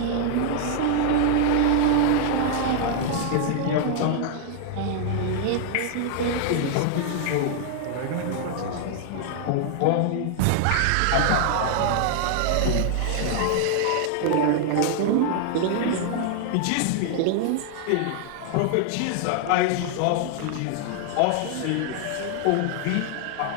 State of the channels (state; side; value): different; both; correlation 0.00